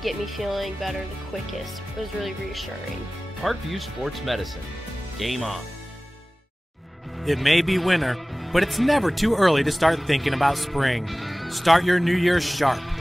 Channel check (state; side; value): normal; both; correlation 0.98